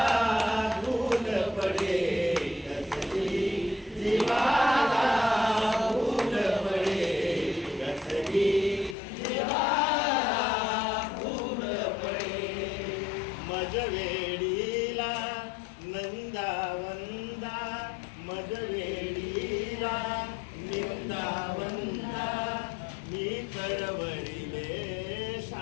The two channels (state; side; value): drops out; right; at 9.0 s